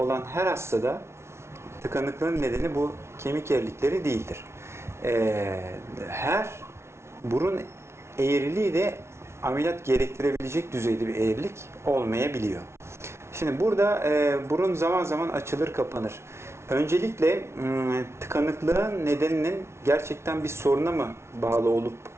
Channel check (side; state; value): left; late; 0.13 ms